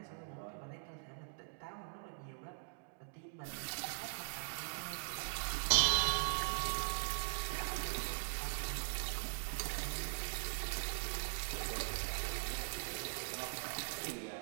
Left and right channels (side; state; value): left; silent; digital silence